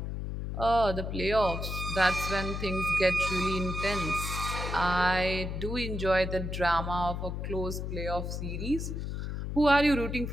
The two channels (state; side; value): noise; left; hum, 4 dB below the sound